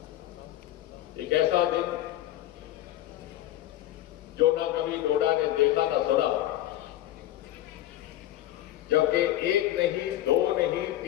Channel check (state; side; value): quieter; right; 13.9 dB